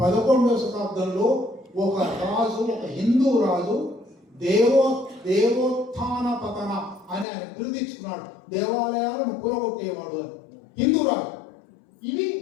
11వ శతాబ్దంలో ఒక రాజు, ఒక హిందూ రాజు దేవోత్థాన పతన అని ఆయన పిలుదిచ్చుకున్నాడు. దేవాలయాలను కూలగొట్టేవాడు అని హిందూ రాజు.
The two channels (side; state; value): right; drops out; at 7.2 s